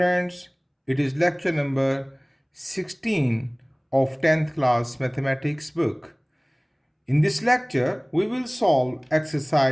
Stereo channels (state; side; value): identical; both; correlation 1.00